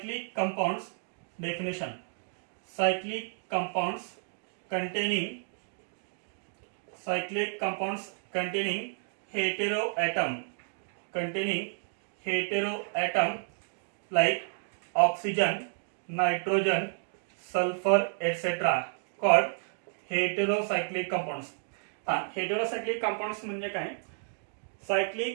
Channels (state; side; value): silent; left; digital silence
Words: compounds. Definition, cyclic compounds containing, cyclic compounds containing hetero atom, containing hetero atom like oxygen, nitrogen, sulfur etc. called heterocyclic compounds. Heterocyclic compounds म्हणजे काय,